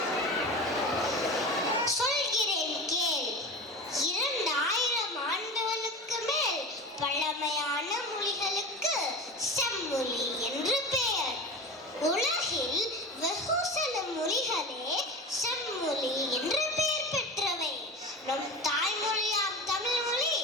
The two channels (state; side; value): normal; both; correlation 0.31